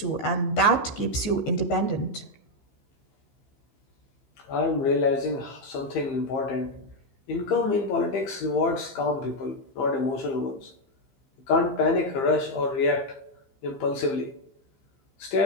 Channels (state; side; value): late; right; 14 ms